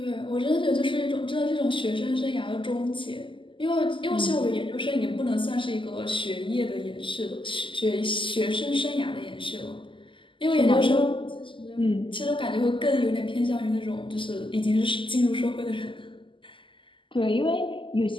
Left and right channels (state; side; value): late; right; 0.25 ms